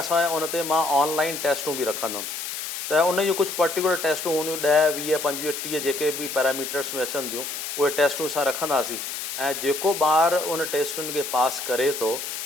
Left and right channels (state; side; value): noise; left; hiss, 6 dB below the sound